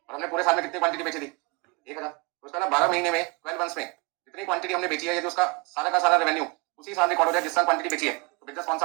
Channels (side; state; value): left; quieter; 28.4 dB